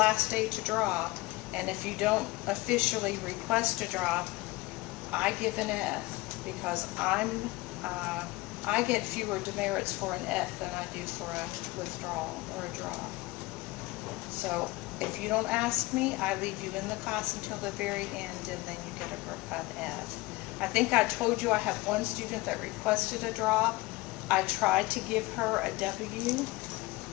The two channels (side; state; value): right; quieter; 21.1 dB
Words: day to drop, and if you don't officially request a drop, I give an F, because I get fewer demerits for an F than I do for a withdrawal or a drop. So if you don't ask me, I leave you in the class until the very end, and then you get an F. I think I told you I have one student that requested a drop. I tried to give her a W,